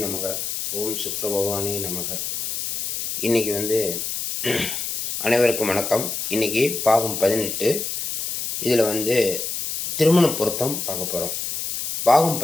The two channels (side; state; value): left; noise; hiss, 3 dB below the sound